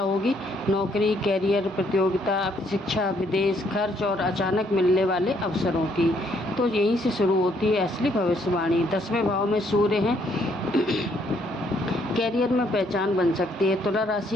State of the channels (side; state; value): both; normal; correlation 0.69